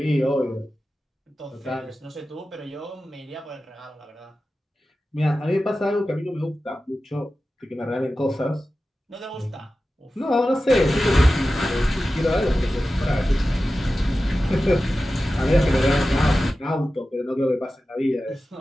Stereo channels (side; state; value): both; normal; correlation 0.94